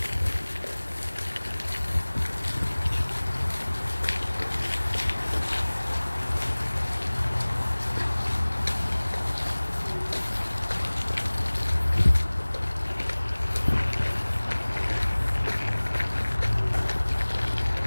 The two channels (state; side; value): inverted; both; correlation -1.00